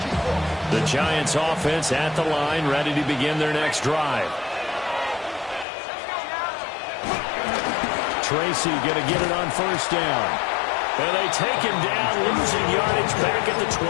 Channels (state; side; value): drops out; right; at 5.7 s